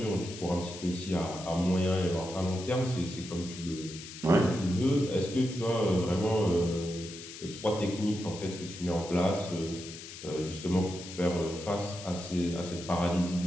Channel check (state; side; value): noise; left; hiss, 13 dB below the sound